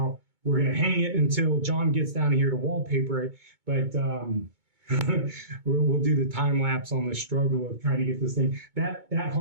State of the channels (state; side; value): late; left; 2.2 ms